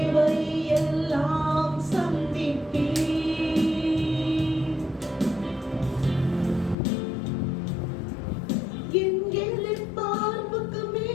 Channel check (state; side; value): drops out; right; at 6.8 s